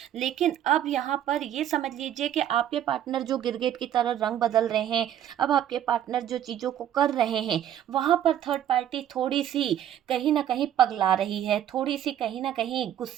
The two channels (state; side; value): quieter; left; 10.8 dB